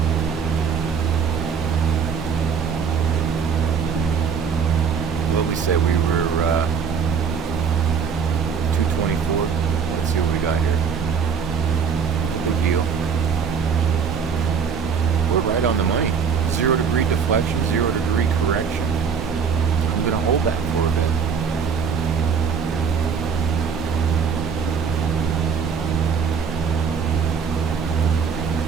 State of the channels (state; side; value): quieter; left; 6.4 dB